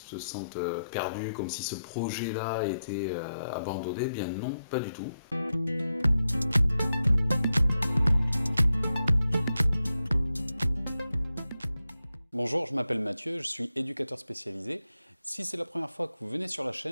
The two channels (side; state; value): both; inverted; correlation -0.87